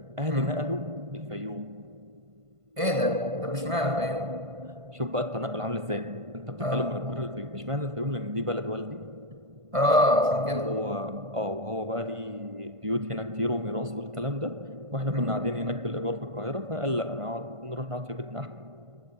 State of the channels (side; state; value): left; late; 1.5 ms